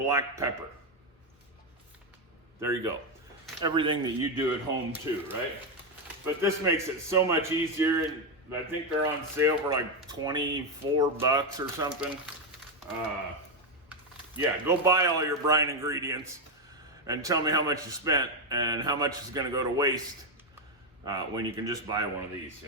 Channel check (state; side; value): normal; both; correlation 0.05